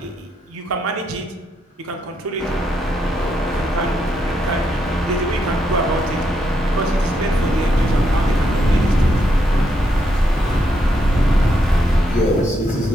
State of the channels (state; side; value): normal; both; correlation 0.79